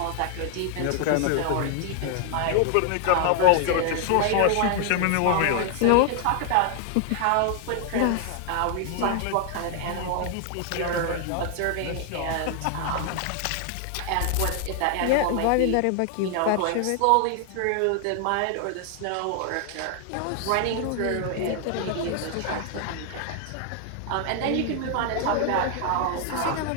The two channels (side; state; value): both; different; correlation 0.00